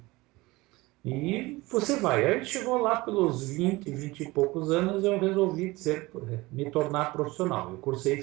E você vai. Aí chegou lá pelos 20 e poucos anos, eu resolvi me tornar profissional. Eu cursei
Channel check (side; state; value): left; quieter; 21.3 dB